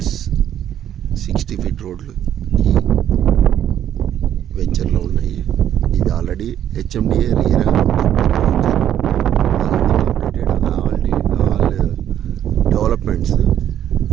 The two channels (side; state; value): left; quieter; 10.5 dB